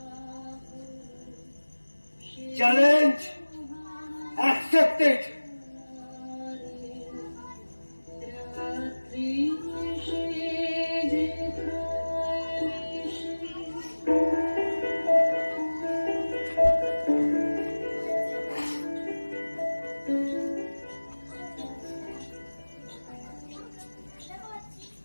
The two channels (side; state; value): both; inverted; correlation -1.00